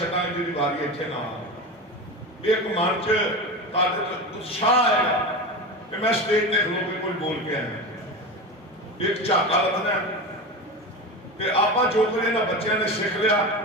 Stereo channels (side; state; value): both; normal; correlation 0.25